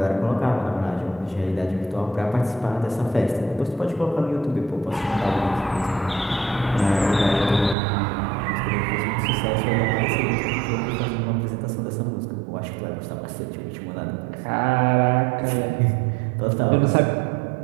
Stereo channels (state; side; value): drops out; left; at 7.8 s